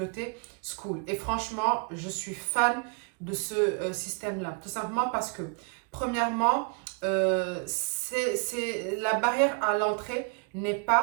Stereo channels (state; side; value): quieter; left; 35.8 dB